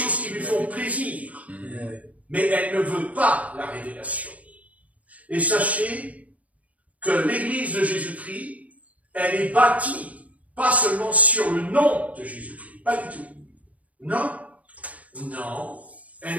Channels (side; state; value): left; late; 0.070 ms